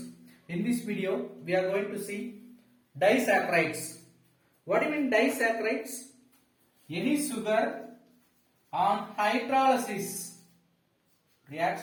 in this video we are going to see disaccharides. What do you mean disaccharides? Any sugar on hydrolysis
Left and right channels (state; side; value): identical; both; correlation 1.00